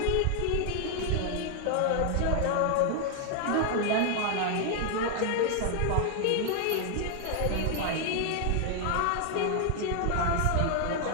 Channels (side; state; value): both; different; correlation 0.00